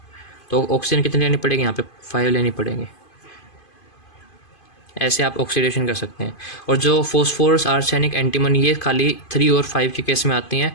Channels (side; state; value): right; late; 2.5 ms